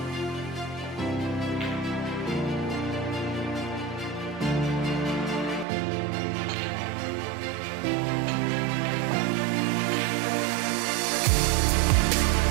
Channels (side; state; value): left; drops out; at 5.7 s